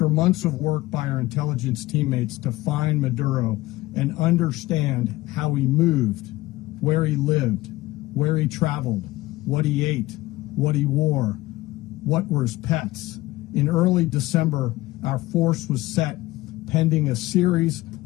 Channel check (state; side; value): quieter; right; 18.5 dB